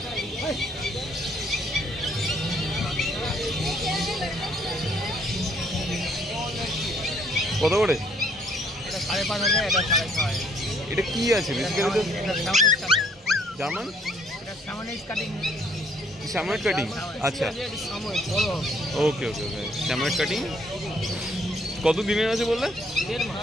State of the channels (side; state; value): both; normal; correlation 0.65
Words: কত করে? এটা 5,500, এটা 6,500। এটা কি আছে বেসিক্যালি? জার্মান? এটা সামনেজ কাটিং। Samoyed cutting? আচ্ছা, ওকে ওকে ওকে। স্যাময়েড কাটিং কত দিনের আছে বললে?